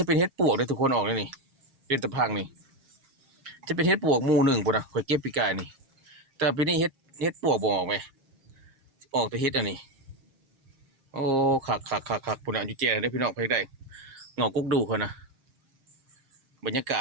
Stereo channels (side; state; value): left; late; 7.5 ms